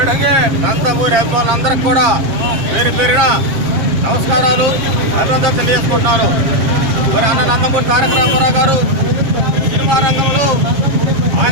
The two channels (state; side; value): late; left; 7.4 ms